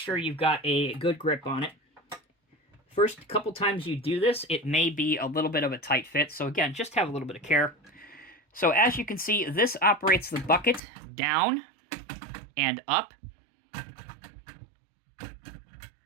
you've got a good grip on it. First couple times you do this, it may be a little bit of a tight fit, so again, just have a little bit of care. So as you can see, this operates the bucket down and up.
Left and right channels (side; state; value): left; drops out; at 10.8 s